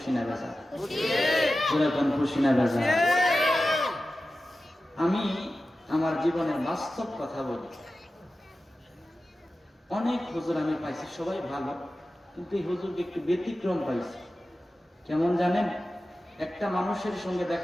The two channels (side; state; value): both; normal; correlation 0.94